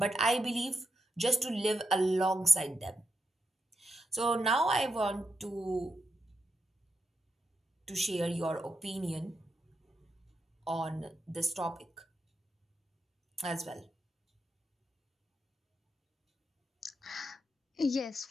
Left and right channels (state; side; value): normal; both; correlation 0.84